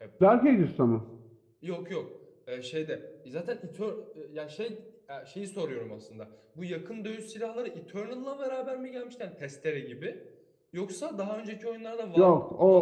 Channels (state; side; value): identical; both; correlation 1.00